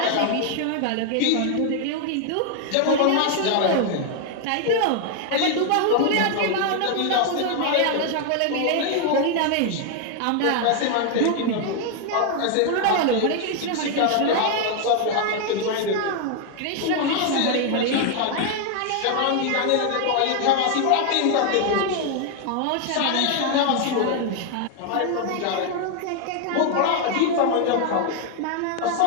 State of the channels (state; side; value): different; both; correlation 0.00